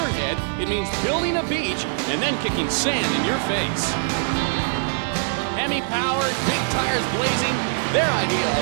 it means building a beach and then kicking sand in your face. Hemi-powered, big tires blazing, their idea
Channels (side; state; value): left; silent; 56 dB below the other